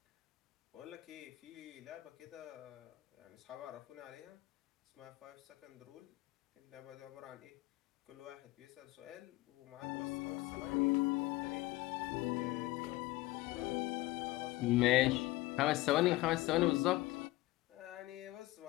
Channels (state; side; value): quieter; right; 18.9 dB